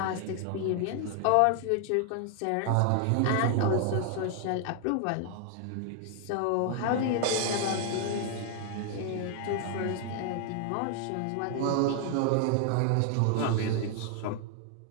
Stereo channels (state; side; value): different; both; correlation 0.00